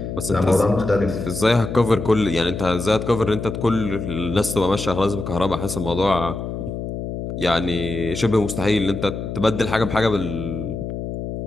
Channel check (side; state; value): left; noise; hum, 6 dB below the sound